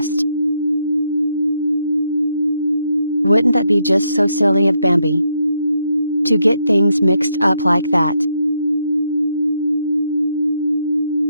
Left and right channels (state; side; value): inverted; both; correlation -0.78